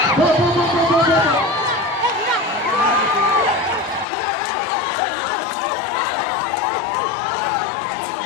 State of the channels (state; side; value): drops out; right; at 4.0 s